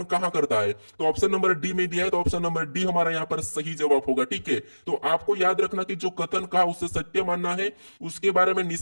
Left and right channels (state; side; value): inverted; both; correlation -1.00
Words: करता है, तो ऑप्शन नंबर डी में दिया है, तो ऑप्शन नंबर डी हमारा यहां पर सही जवाब होगा। ठीक है, तो आपको याद रखना कि जो कथन कहा उसे सत्य मानना है, उसके बारे में